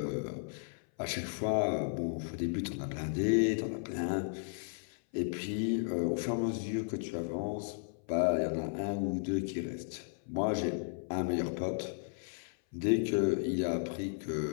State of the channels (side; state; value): right; silent; 55 dB below the other